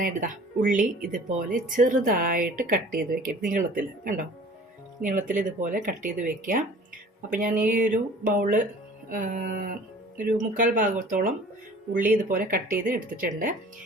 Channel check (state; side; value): normal; both; correlation 0.47